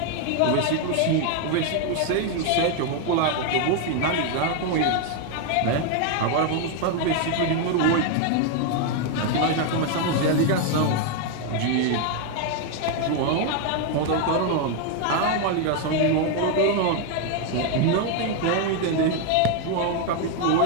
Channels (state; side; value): different; both; correlation 0.01